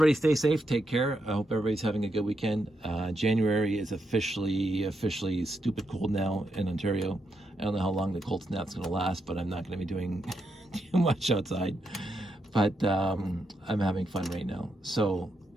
stay safe, take care. I hope everybody's having a good weekend. January is officially stupid cold now in Ontario. I don't know how long the cold snap's gonna last, but I'm not gonna be doing too much outside. But I'm having fun right now. So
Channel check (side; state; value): both; normal; correlation 0.82